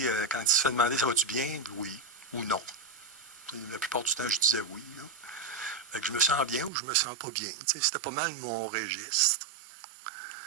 quand il se fait demander ça va-tu bien, oui ou non. La plupart du temps, je disais oui. Fait que je me sens bien ou je me sens pas bien. Tu sais, c'était pas mal mon registre.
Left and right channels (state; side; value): drops out; left; at 6.7 s